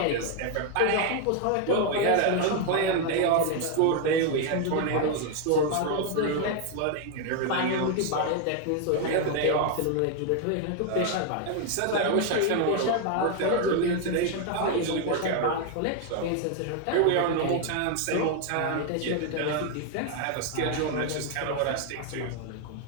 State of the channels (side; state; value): both; different; correlation 0.01